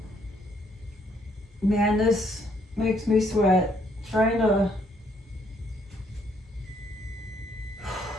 man, this makes me sweat. Trying to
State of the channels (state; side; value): normal; both; correlation 0.69